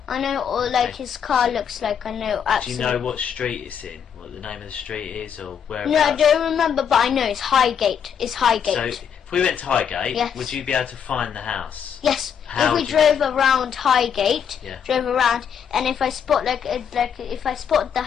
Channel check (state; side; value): quieter; right; 7.8 dB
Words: I know, his car looks like, I know absolutely. Do you know what street it's in? What the name of the street is, or where? No, I don't remember, but I know it's Highgate. It's Highgate. So if we went to Highgate, would you be able to find the house? Yes. If we drove around Highgate, and if I spot if I spot the